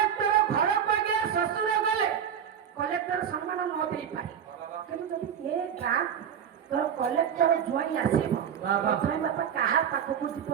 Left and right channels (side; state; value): left; quieter; 8.5 dB